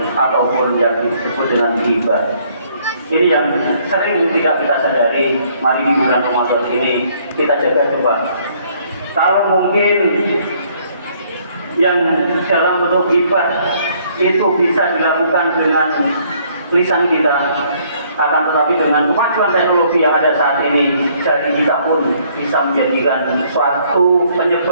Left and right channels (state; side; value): inverted; both; correlation -0.64